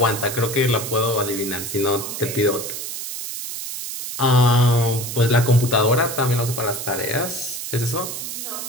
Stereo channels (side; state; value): right; noise; hiss, 6 dB below the sound